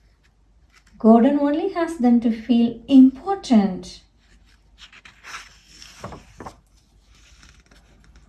Gordon only has them to feel important.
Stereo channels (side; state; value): both; identical; correlation 1.00